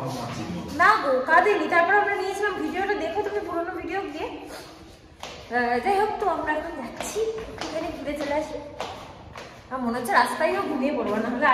না গো, কাঁদেনি। তারপর আমরা নিয়েছিলাম, ভিডিওটা দেখো তুমি, পুরোনো ভিডিও গিয়ে। যাই হোক, তো আমরা এখন যাচ্ছি, এখানে ঘুরে চলে আসি। আমার মনে হচ্ছে রাস্তায়ও ঘুমিয়ে পড়বো, না হলে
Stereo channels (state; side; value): identical; both; correlation 1.00